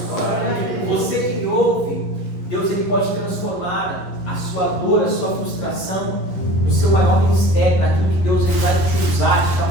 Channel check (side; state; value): right; late; 11 ms